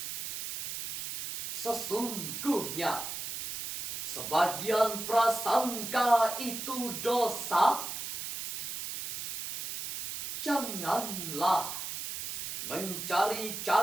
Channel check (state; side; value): noise; right; hiss, 6 dB below the sound